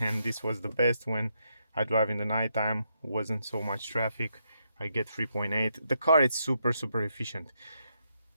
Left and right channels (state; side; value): inverted; both; correlation -0.79